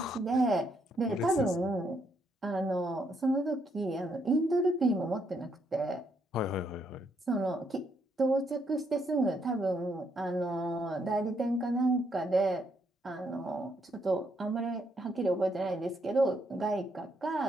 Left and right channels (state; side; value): normal; both; correlation 0.75